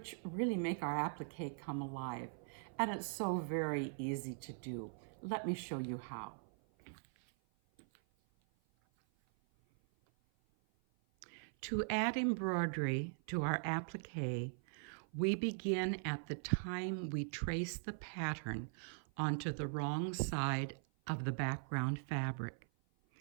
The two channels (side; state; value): left; silent; 50 dB below the other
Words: really make our applique come alive, and it's so very easy to do. Let me show you how. To add embroidery to our applique, we begin at the time we trace the pattern onto the wrong side of the background fabric.